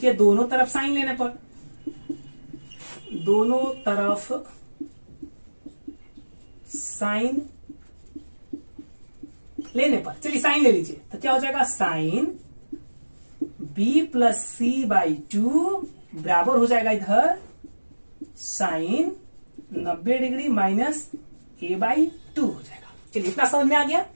दोनों तरफ साइन लेने पर, दोनों तरफ साइन लेने पर, चलिए साइन ले लीजिए, तो क्या हो जाएगा, साइन b + c/2 बराबर हो जाएगा इधर साइन 90 डिग्री माइनस a/2 हो जाएगा। चलिए, इतना समझ में आ गया।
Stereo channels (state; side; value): inverted; both; correlation -1.00